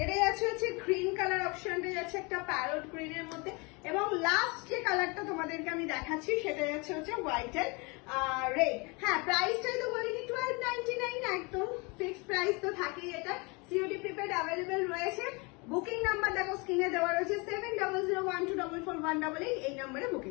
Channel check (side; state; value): right; quieter; 29.0 dB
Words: এটাই হচ্ছে গ্রিন কালার অপশনটা যাচ্ছে একটা প্যারট গ্রিনের মধ্যে, এবং লাস্ট যে কালারটা তোমাদেরকে আমি দেখাচ্ছি সেটা হচ্ছে হোয়াইট এন্ড রেড। হ্যাঁ, প্রাইসটাই তো বলিনি, 1299 একদম ফিক্সড প্রাইস তো থাকেই। এটা সিওডি প্রিপেড অ্যাভেলেবেল রয়েছে। বুকিং নাম্বার দেখো স্ক্রিনে দেওয়া রয়েছে 7001244188, এই নাম্বারে